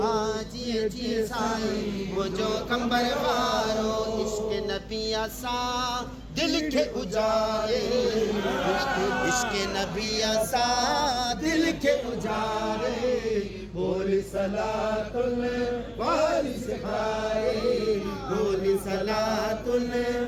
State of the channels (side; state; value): both; identical; correlation 1.00